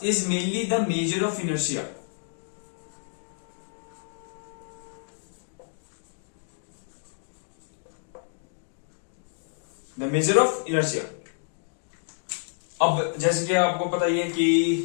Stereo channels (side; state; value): right; silent; digital silence